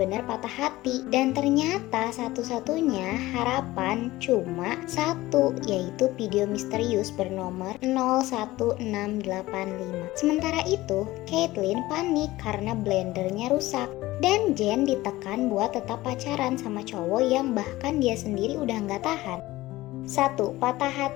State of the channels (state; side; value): quieter; right; 17.9 dB